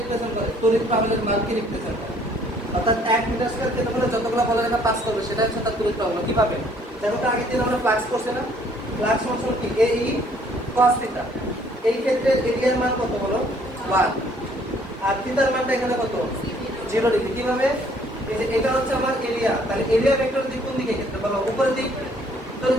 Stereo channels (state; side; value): normal; both; correlation 0.61